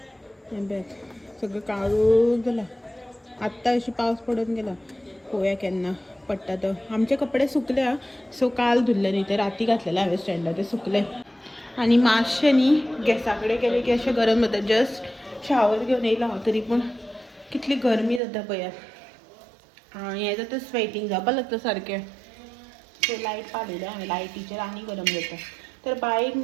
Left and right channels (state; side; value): drops out; left; at 18.2 s